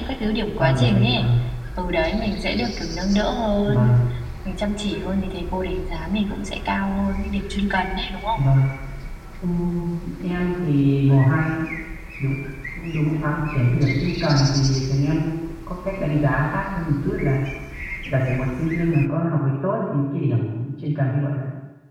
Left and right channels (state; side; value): identical; both; correlation 1.00